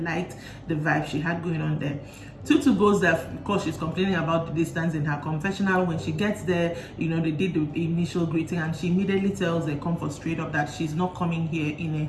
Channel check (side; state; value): both; identical; correlation 1.00